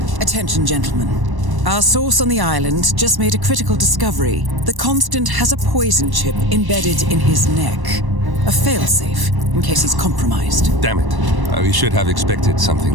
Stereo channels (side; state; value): left; late; 1.1 ms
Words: Attention, gentlemen. Our source on the island just made a critical discovery. The Constant has a poison chip embedded in his neck. A failsafe, in case he's compromised. Damn it. We should have expected something